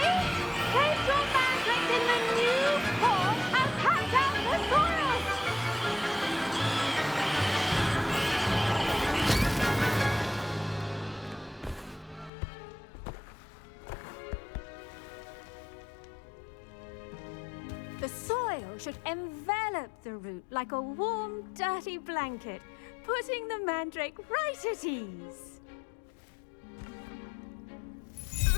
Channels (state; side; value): drops out; right; at 12.3 s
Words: The soil should envelop the root like a warm, dirty blanket, putting the mandrake right at ease.